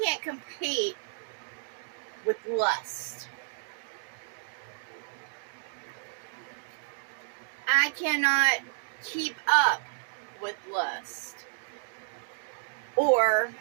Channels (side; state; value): left; silent; digital silence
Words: compete with lust. I cannot keep up with lust. Or